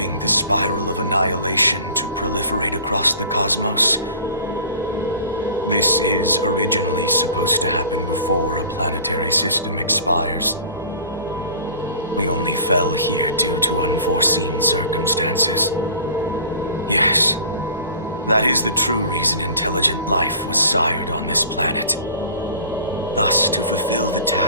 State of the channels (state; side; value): inverted; both; correlation -0.44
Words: the spiral of annihilation to proliferate across the cosmos. This is originally supposed to happen before a planetary system expires. We only fell here due to unforeseen circumstances. Yes, that is the true reason intelligent life was sired on this planet. Thus, to fulfill the